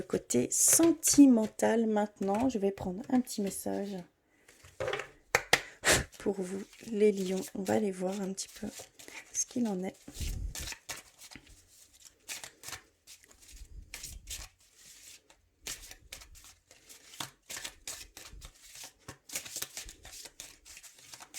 côté sentimental maintenant. Je vais prendre un petit message pour vous, les lions. On va aller voir un petit peu ce qu'il en est.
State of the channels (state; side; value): identical; both; correlation 1.00